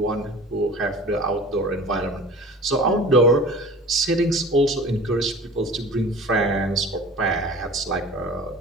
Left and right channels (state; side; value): normal; both; correlation 0.41